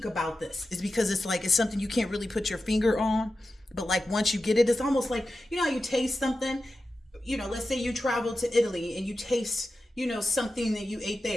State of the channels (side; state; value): both; normal; correlation 0.92